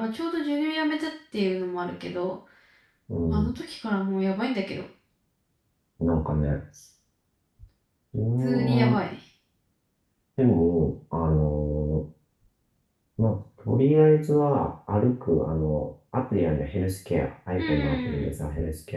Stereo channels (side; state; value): both; identical; correlation 1.00